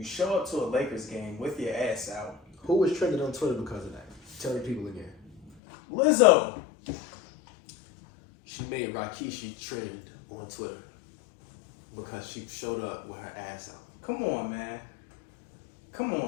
show up to a Lakers game with your ass out. Who was trending on Twitter because of that? Tell the people again. Lizzo. She made Rakishi trend on Twitter because she showed up with her ass out. Come on, man. Come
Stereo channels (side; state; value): right; drops out; at 5.5 s